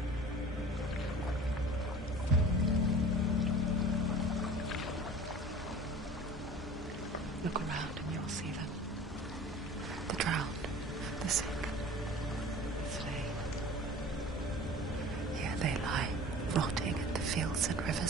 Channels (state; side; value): normal; both; correlation 0.42